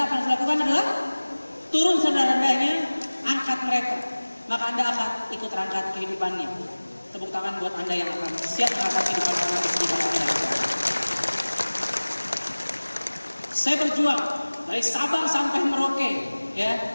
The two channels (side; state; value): both; inverted; correlation -1.00